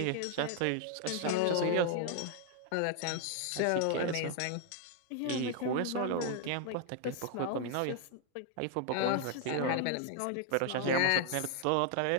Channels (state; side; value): different; both; correlation 0.00